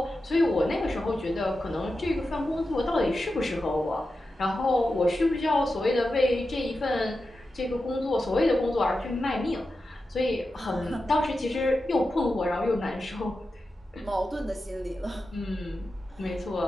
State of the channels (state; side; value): normal; both; correlation 0.91